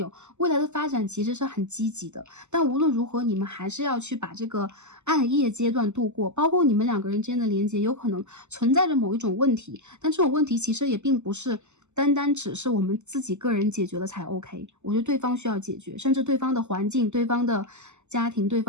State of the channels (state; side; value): late; left; 0.83 ms